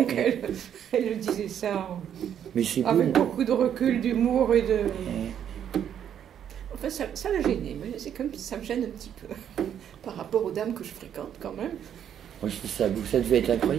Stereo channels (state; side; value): quieter; left; 9.3 dB